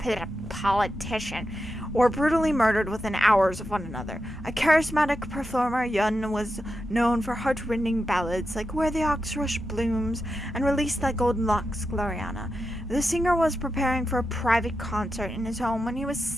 politician, were brutally murdered within hours of one another. A charismatic performer, Yun was known for heart-rending ballads like Where the Ox Rush Blooms and Release Thy Golden Locks, WaraAina. The singer was preparing for a private concert in his home when he was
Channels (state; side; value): normal; both; correlation 0.89